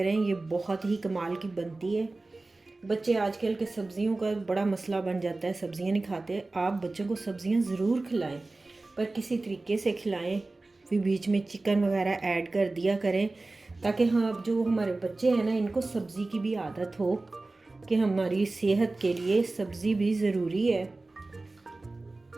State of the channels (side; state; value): left; quieter; 3.2 dB